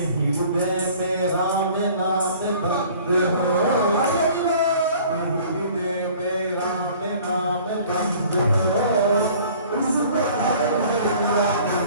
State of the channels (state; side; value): inverted; both; correlation -0.51